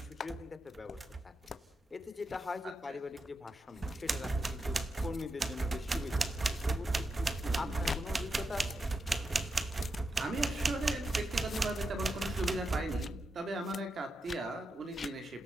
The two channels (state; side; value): normal; both; correlation 0.87